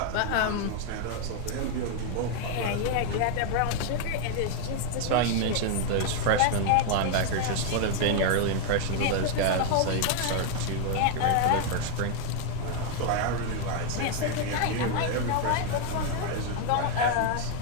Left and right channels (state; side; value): different; both; correlation 0.00